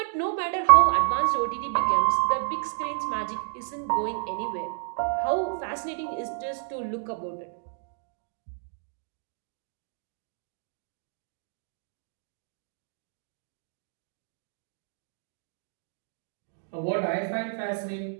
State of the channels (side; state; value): left; silent; digital silence